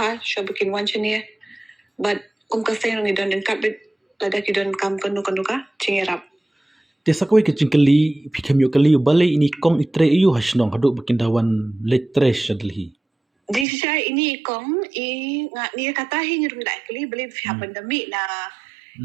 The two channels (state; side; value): drops out; left; at 13.7 s